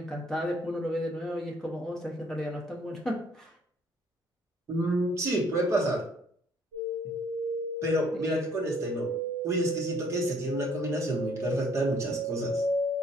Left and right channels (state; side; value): normal; both; correlation 0.62